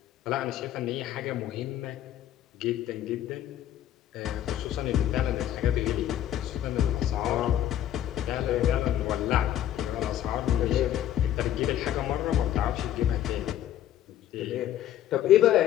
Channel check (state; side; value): quieter; right; 11.7 dB